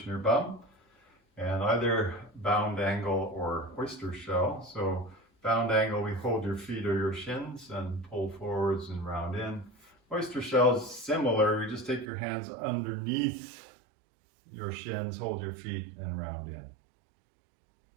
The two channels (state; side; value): drops out; left; at 12.1 s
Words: your bum. And either bound angle or oyster shell. So bound angle, we hold your feet or your shins and pull forwards and round in. Oyster shell is similar. You just take your hands underneath your shins, hold your feet and round